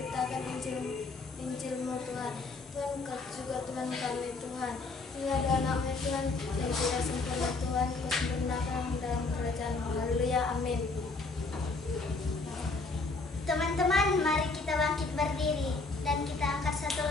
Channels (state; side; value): quieter; right; 3.7 dB